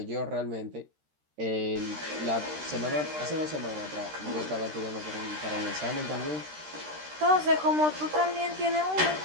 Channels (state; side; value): late; left; 13 ms